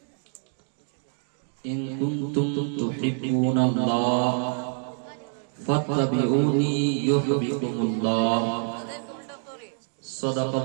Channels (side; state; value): left; silent; 61 dB below the other